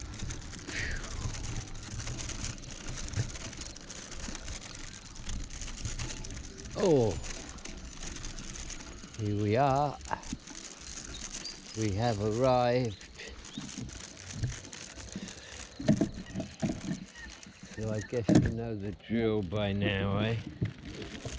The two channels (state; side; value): identical; both; correlation 1.00